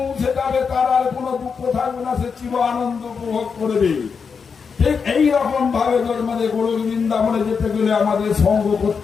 যাবে তার আর কোনো দুঃখ থাকবে না, সে চির আনন্দ উপভোগ করবে। ঠিক এইরকম ভাবে আমাদের গোলক বৃন্দাবনে যেতে গেলে আমাদের সঙ্গ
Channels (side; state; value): right; quieter; 5.8 dB